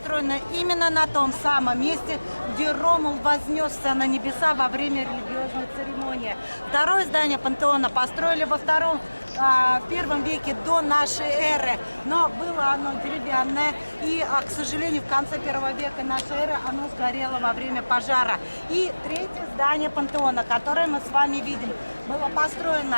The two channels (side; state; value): both; inverted; correlation -1.00